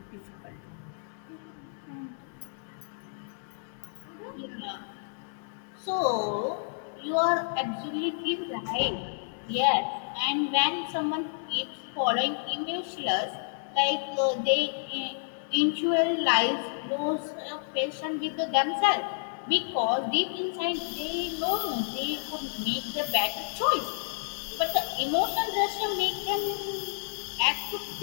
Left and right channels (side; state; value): right; silent; digital silence